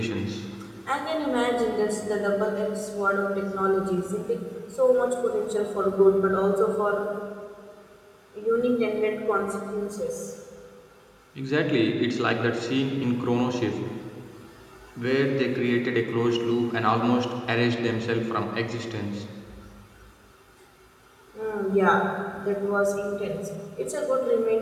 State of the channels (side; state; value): both; identical; correlation 1.00